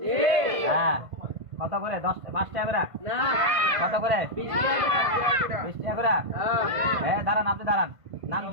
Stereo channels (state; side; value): late; left; 1.5 ms